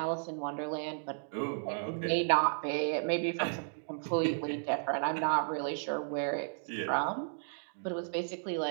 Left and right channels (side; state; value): left; silent; digital silence